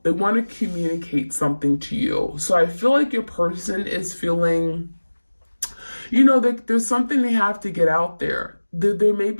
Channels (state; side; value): inverted; both; correlation -1.00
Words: They want to communicate something to you. So I feel like your person is feeling, there's something they have to get out there. There may